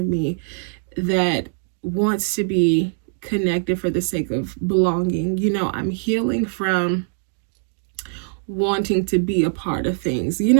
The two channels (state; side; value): silent; left; digital silence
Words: me that wants to be connected for the sake of belonging. I'm healing from wanting to be a part of things.